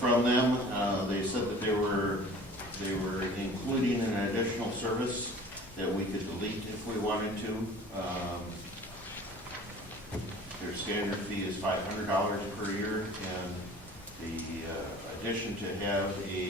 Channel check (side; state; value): both; normal; correlation 0.45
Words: them. They said that they were including an additional service that we could delete if we wanted to. Their standard fee is $500 per year, and the addition to have